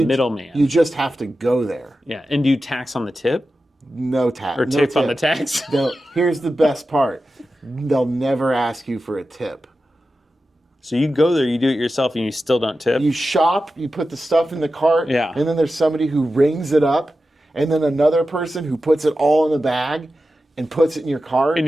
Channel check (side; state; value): both; normal; correlation 0.92